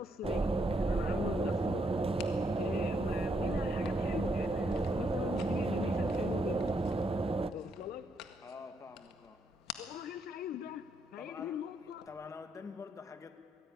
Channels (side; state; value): both; normal; correlation 0.76